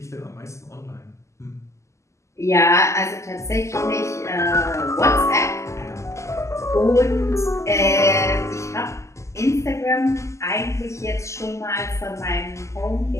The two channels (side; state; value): right; late; 0.14 ms